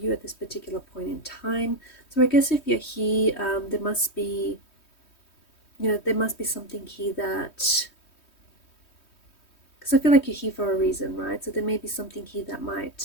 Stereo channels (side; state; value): right; late; 3.2 ms